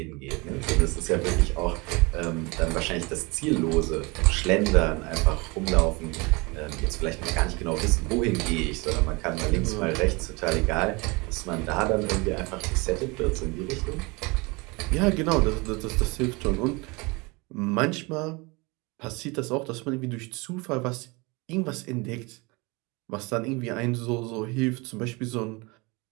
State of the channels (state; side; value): quieter; left; 26.5 dB